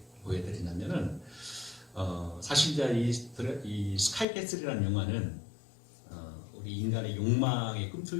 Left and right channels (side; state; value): right; drops out; at 4.2 s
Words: 보여드리냐면은 사실 이제 이 스카이캐슬이라는 영화는 우리 인간의 욕망에